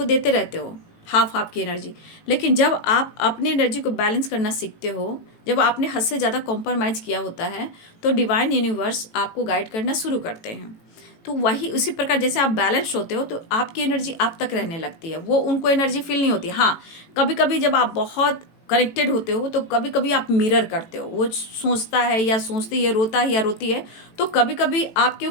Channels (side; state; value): right; late; 18 ms